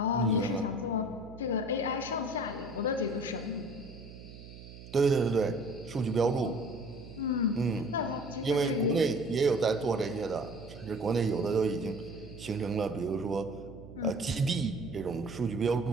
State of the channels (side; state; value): right; noise; hum, 15 dB below the sound